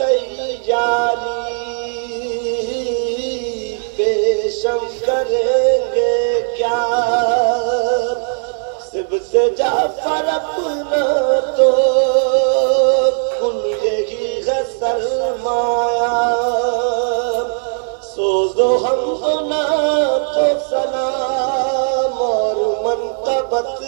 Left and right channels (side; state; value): left; silent; 67 dB below the other